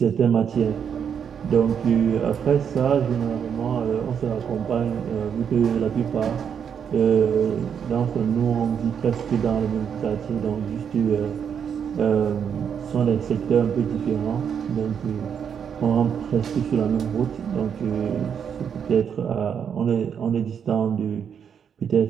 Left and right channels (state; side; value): quieter; left; 7.6 dB